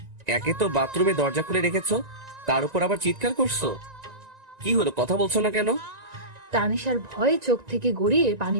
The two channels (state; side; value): late; left; 1.9 ms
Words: একে তো বাথরুমে দরজা খুলে রেখেছো, তার উপর আবার চিৎকার করছো। কি হলো, কথা বলছো না কেন? তানিশার ভয়ে চোখ থেকে গড়িয়ে পানি